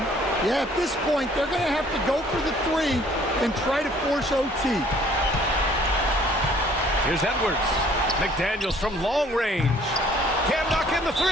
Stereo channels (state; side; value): normal; both; correlation 0.58